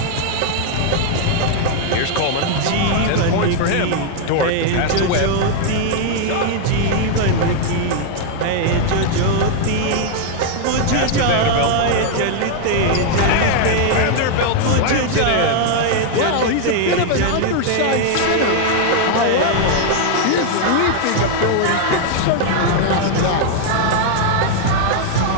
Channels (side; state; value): both; different; correlation 0.00